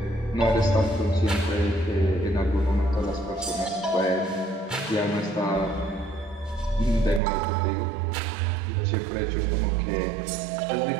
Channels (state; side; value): drops out; left; at 7.2 s